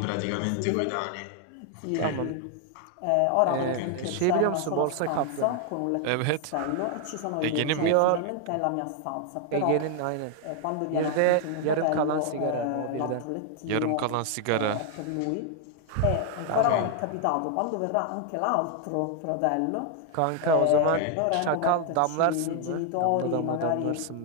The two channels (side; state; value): both; different; correlation 0.00